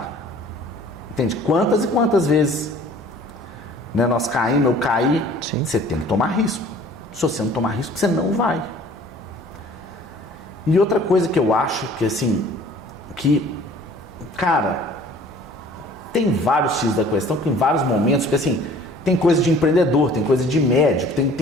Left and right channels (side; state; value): both; normal; correlation 0.51